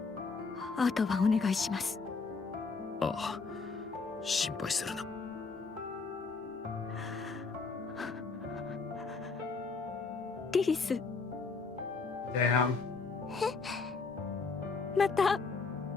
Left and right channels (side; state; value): right; quieter; 4.4 dB